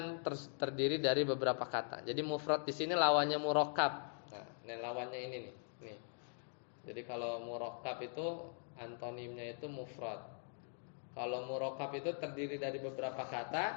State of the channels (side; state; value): right; silent; digital silence